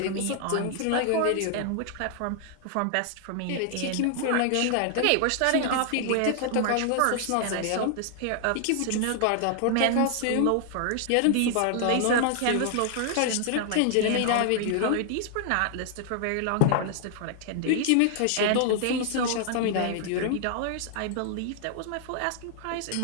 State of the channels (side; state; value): both; different; correlation 0.00